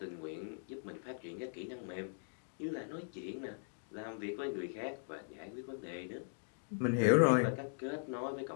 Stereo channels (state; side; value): silent; right; digital silence